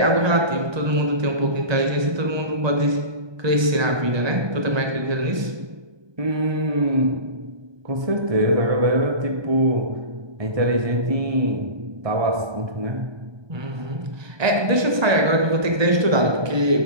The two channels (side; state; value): left; late; 1.2 ms